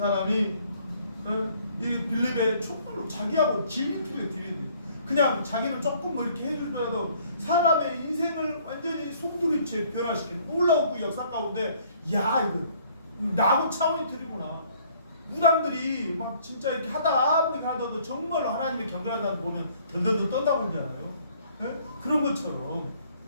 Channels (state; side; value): inverted; both; correlation -0.60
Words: 이 빌립의 촛불로 자기하고 진인투에 들이대. 그냥 자기는 조금 뭐 이렇게 해주더라도 사람의 인생을 완전히 송두리째 변화시키는 놀라운 그 역사 가운데 야 이거 야구 차원의 틀이구나. 무당들이 막 진짜 이렇게 하다도 정말로 하나님의 경건하다는 보면 덜덜덜 떤다고 그러잖아요. 예? 그런 것처럼